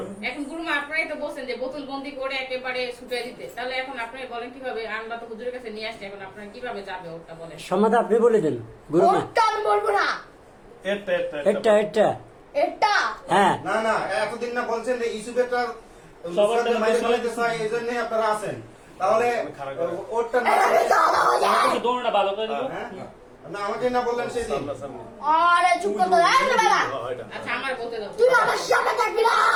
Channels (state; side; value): identical; both; correlation 1.00